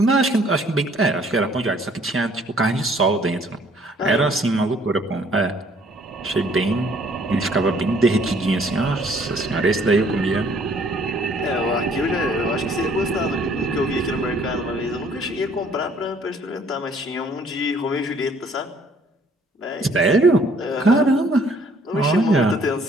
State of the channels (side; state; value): both; normal; correlation 0.61